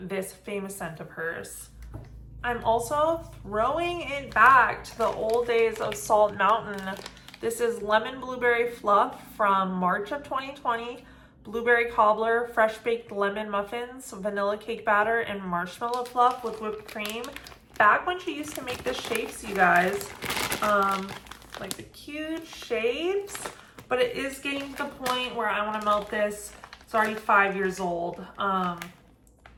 this famous scent of hers. I'm also throwing it back to the old days of Salt Mountain. This is lemon blueberry fluff from March of 2020. Blueberry cobbler, fresh baked lemon muffins, vanilla cake batter, and marshmallow fluff with whipped cream. Back when she used to make the shapes, you guys, like the cute shapes, but it is getting to the point where I want to melt this. It's already 5 years old,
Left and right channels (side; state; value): both; identical; correlation 1.00